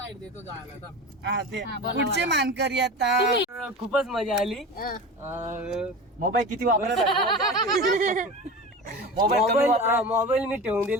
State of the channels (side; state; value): both; normal; correlation 0.31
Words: देतो जायला. हा, ते पुढचे मानकरी आता खूपच मजा आली. मोबाईल किती वापरत मोबाईल मी ठेवून